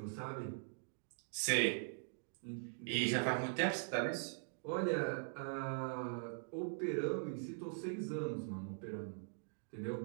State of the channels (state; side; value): silent; left; digital silence